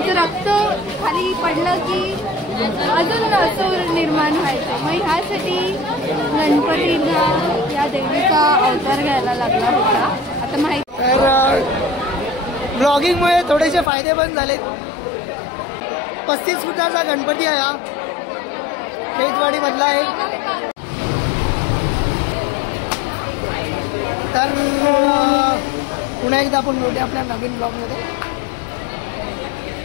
रक्त खाली पडलं की अजून असं निर्माण व्हायचं. मग ह्यासाठी गणपतीला या देवीचा अवतार घ्यायला लागला होता. आता माहिती तर ब्लॉगिंगमुळे थोडेसे फायदे पण झालेत. 35 फुटाचा गणपती आहे हा, खेतवाडी मधला आहे. तर पुन्हा एकदा आपण भेटूया आपल्या नवीन ब्लॉगमध्ये.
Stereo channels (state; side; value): drops out; right; at 13.9 s